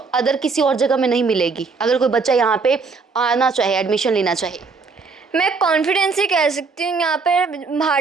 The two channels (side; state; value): left; quieter; 4.5 dB